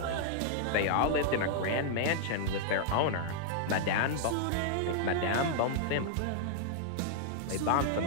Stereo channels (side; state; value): both; different; correlation -0.01